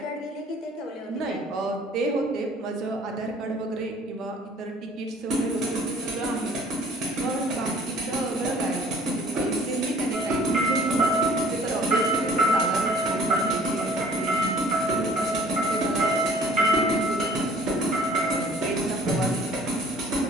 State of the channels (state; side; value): normal; both; correlation 0.53